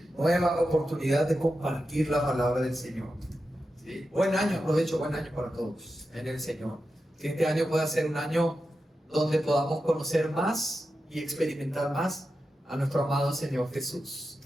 nueva oportunidad de compartir la palabra del Señor. ¿Sí? Buen año, aprovecho, buen año para todos en el Señor. Que este año pueda ser un año donde podamos conocer más y experimentar más a nuestro amado Señor Jesús,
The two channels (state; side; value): normal; both; correlation 0.90